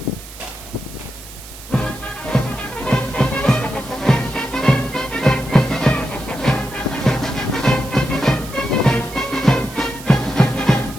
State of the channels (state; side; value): noise; right; hiss, 16 dB below the sound